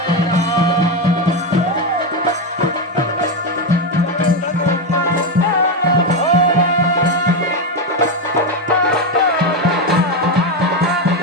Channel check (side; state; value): both; normal; correlation 0.10